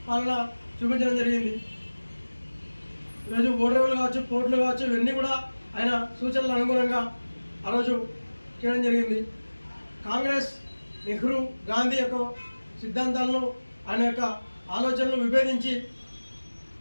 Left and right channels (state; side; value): inverted; both; correlation -1.00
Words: పాలన చూపించడం జరిగింది. ఈరోజు ఓడరేవులు కావచ్చు, పోర్టులు కావచ్చు, ఇవన్నీ కూడా ఆయన సూచనల అనుగుణంగా ఆ రోజు చేయడం జరిగింది. కాంగ్రెస్, నెహ్రూ, గాంధీ యొక్క సిద్ధాంతాలను, ఆయన యొక్క ఆలోచనలు విభేదించి